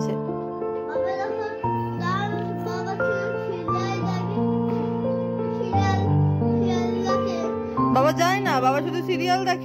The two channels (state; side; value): identical; both; correlation 1.00